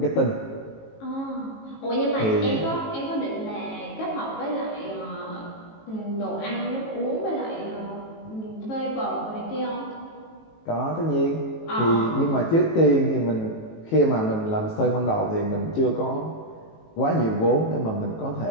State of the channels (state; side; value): late; right; 18 ms